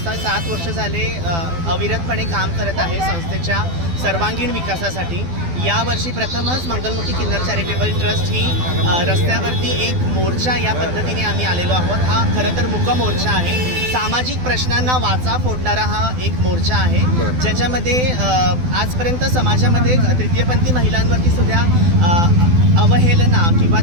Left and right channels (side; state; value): left; late; 12 ms